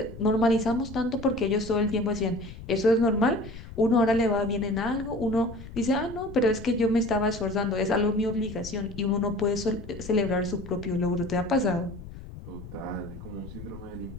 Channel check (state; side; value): noise; left; rumble, 14 dB below the sound